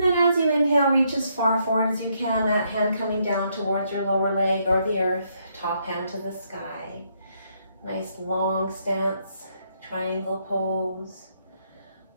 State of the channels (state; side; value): inverted; both; correlation -0.74